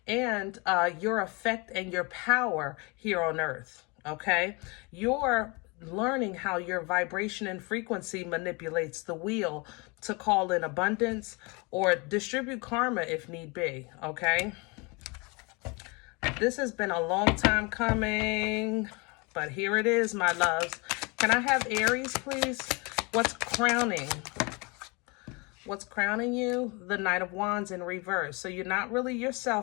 and your effect and your power here on earth, okay? You're learning how your vibration and frequency manipulates the wheel to call in abundance or distribute karma if need be, okay? This has been a long time coming, but here it is, my loves. Can I have Aries, please? What's crowning? What's crowning you? The Knight of Wands in reverse. So you're not really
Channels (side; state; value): right; quieter; 28.9 dB